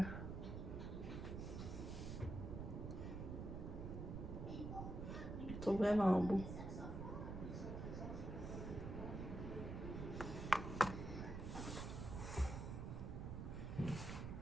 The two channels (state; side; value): noise; right; rumble, 4 dB below the sound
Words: Je le trouve vraiment beau.